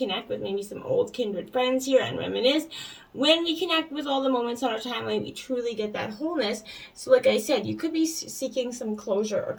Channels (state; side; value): identical; both; correlation 1.00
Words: with maybe some old kindred friends here and reminisce. When we connect with all the moments on our timeline, we truly get that wholeness. So like I said, you could be seeking some closure or